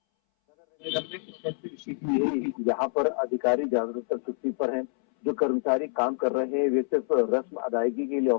नगर निगम में यहाँ पर अधिकारी जागरूकता छुट्टी पर हैं, जो कर्मचारी काम कर रहे हैं वे सिर्फ रस्म अदायगी के लिए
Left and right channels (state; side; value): silent; right; 60 dB below the other